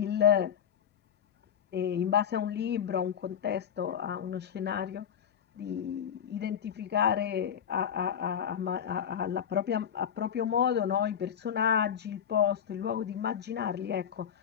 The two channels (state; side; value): quieter; right; 8.5 dB